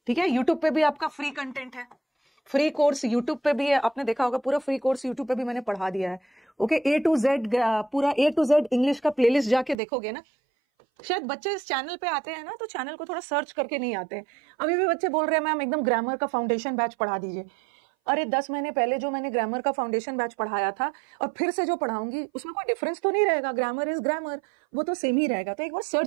ठीक है, यूट्यूब पे भी आपका फ्री कंटेंट है, फ्री कोर्स यूट्यूब पे भी है। आपने देखा होगा पूरा फ्री कोर्स यूट्यूब पे भी मैंने पढ़ा दिया है। ओके, A to Z पूरा A to Z इंग्लिश का प्लेलिस्ट जाके देखोगे ना। शायद बच्चे इस चैनल पे आते हैं ना तो चैनल को थोड़ा सर्च करके नहीं आते हैं। अभी भी बच्चे बोल रहे हैं मैम एकदम ग्रामर का फाउंडेशन बैच पढ़ा दीजिए। अरे 10 महीने पहले जो मैंने ग्रामर का फाउंडेशन बैच पढ़ाया था और फिर से जो पढ़ाऊंगी उसमें कोई डिफरेंस तो नहीं रहेगा। ग्रामर इज ग्रामर, वो तो सेम ही रहेगा। तो एक बार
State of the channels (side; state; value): left; drops out; at 9.8 s